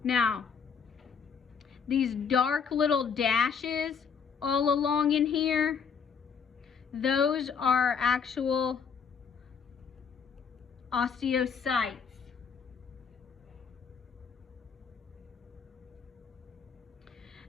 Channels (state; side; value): quieter; right; 6.4 dB